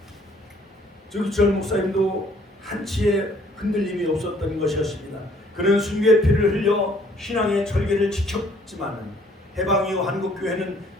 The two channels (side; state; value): both; normal; correlation 0.61